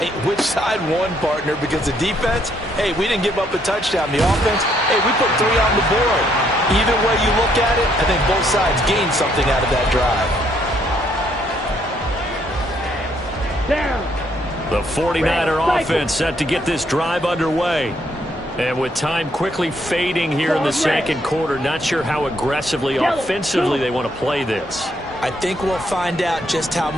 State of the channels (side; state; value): both; normal; correlation 0.71